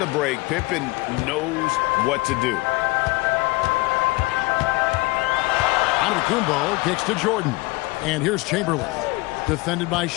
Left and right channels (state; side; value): quieter; right; 22.8 dB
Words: break, Pippen knows what to do. Antetokounmpo kicks to Jordan. And here's Chamberlain. Defended by